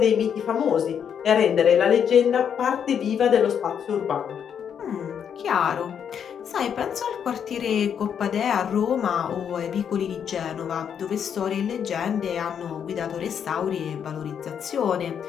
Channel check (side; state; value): right; quieter; 8.0 dB